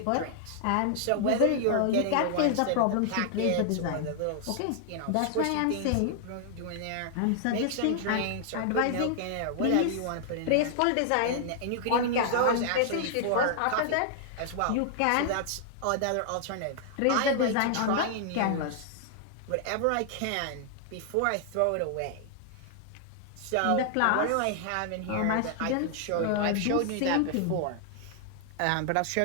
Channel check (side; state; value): both; different; correlation 0.00